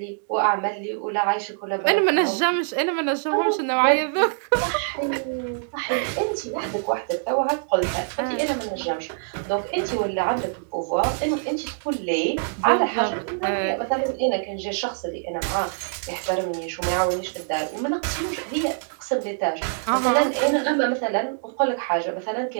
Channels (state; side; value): silent; left; digital silence